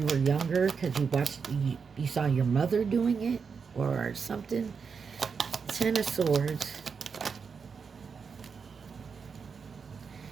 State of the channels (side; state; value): left; quieter; 5.8 dB